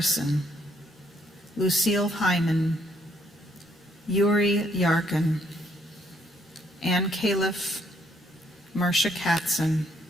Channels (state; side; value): normal; both; correlation 0.69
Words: Lucille Hyman, Yuri Yarkin, Ann Califf, Marcia Katzen,